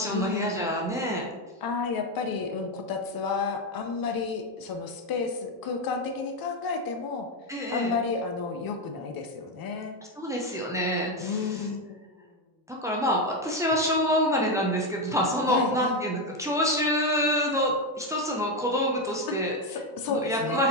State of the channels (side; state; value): both; normal; correlation 0.09